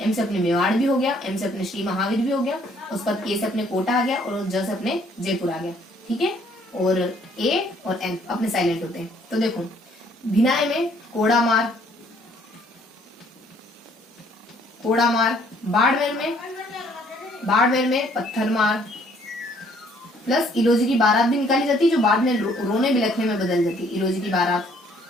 M से अपने मेवाड़ भी हो गया, M से अपने श्री महावीर भी हो गया, उसके बाद K से अपने कोटा आ गया और ज से अपने जयपुर आ गया, ठीक है। और A और N अपने साइलेंट होते हैं। तो देखो भिनाय में कोड़ामार, बाड़मेर में पत्थरमार, प्लस इलोजी की बारात भी निकाली जाती है जो बाद में रोने बिलखने में बदल जाती है। इलोजी की बारात,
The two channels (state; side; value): normal; both; correlation 0.63